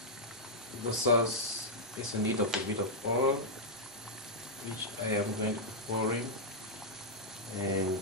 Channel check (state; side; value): normal; both; correlation -0.07